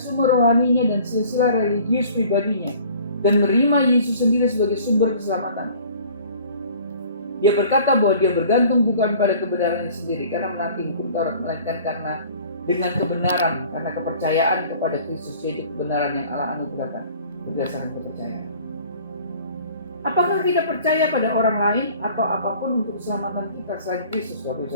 rohaninya dan silsilah religius pribadinya dan menerima Yesus sendiri sebagai sumber keselamatan. Dia berkata bahwa dia bergantung bukan pada kebenarannya sendiri karena menaati hukum Taurat, melainkan karena dengan kebenaran, karena kepercayaan kepada Kristus, yaitu kebenaran yang Allah anugerahkan berdasarkan kepercayaan. Apakah kita percaya pada orang lain atau apapun untuk keselamatan kita selain Kristus, Bapak Ibu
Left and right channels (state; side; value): inverted; both; correlation -0.49